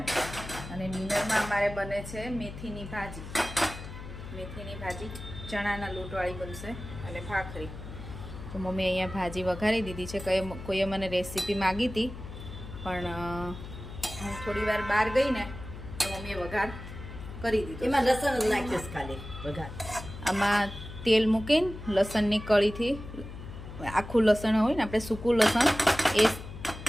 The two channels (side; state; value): left; noise; hum, 11 dB below the sound